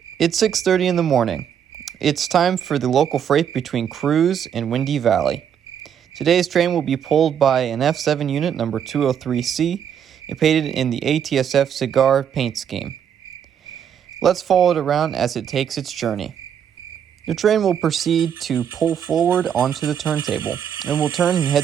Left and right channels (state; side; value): quieter; left; 8.6 dB